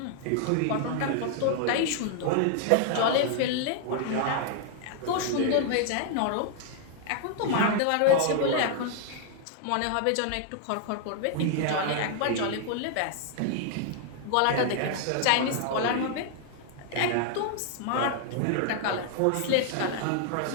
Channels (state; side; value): different; both; correlation 0.00